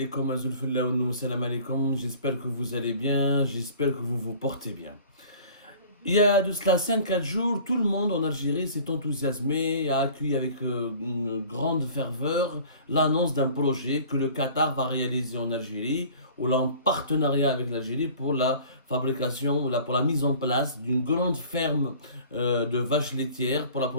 que vous allez bien, j'espère que vous vous portez bien. Il y a de cela 5-4 jours, tout le monde en Algérie s'est enthousiasmé et a accueilli avec une grande ferveur l'annonce d'un projet que le Qatar va réaliser en Algérie, ou là en partenariat avec l'Algérie pour la fabrication, pour la mise en place d'une grande ferme de vaches laitières pour la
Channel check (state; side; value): inverted; both; correlation -0.47